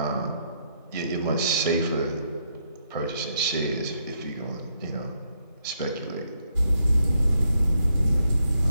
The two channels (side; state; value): both; inverted; correlation -0.76